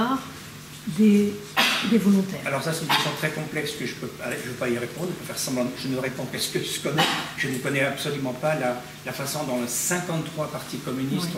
des volontaires? Alors ça, c'est une question très complexe que je ne peux pas y répondre. Je peux faire semblant, je ne réponds qu'à ce que je connais. Je ne connais absolument pas la façon dont 53 partis communistes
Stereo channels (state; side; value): identical; both; correlation 1.00